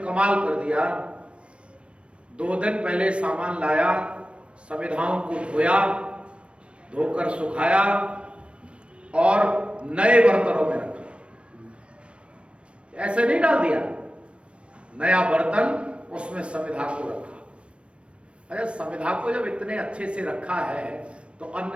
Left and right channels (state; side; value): late; left; 0.060 ms